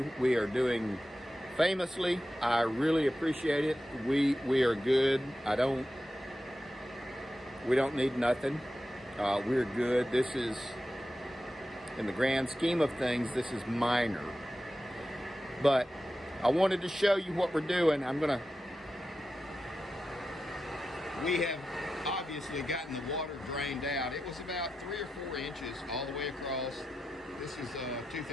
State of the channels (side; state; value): both; normal; correlation 0.91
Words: We are doing famously. I really appreciate it. We are good. We don't need nothing. We're good. This is, in the grand scheme of things, this is minor. But I wanted to show you what we're doing. We have obviously gotten the water drained out. It was about 3 or 4 inches all the way across. This is